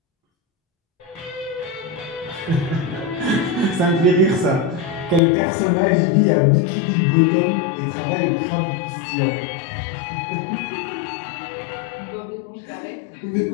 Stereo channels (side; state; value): right; drops out; at 5.2 s